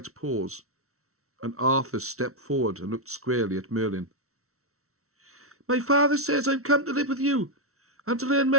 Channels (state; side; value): late; left; 0.63 ms